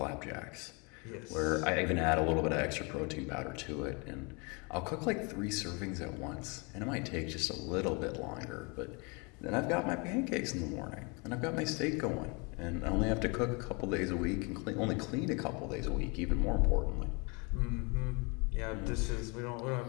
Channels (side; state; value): right; quieter; 30.8 dB